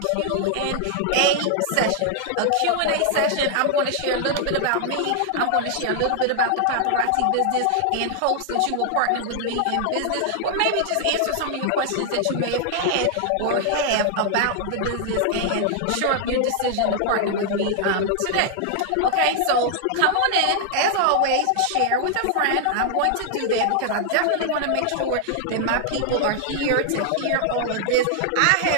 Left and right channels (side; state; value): both; different; correlation 0.00